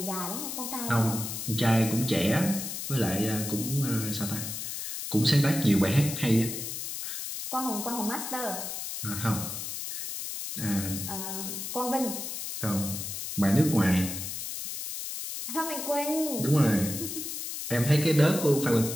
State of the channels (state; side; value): noise; left; hiss, 6 dB below the sound